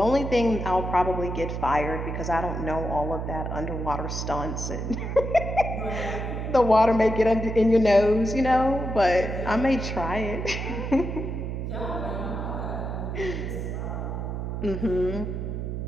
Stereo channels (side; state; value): right; noise; hum, 4 dB below the sound